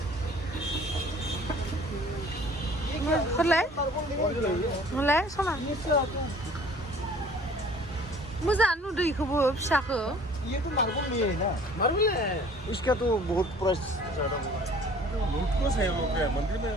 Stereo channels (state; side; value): normal; both; correlation 0.51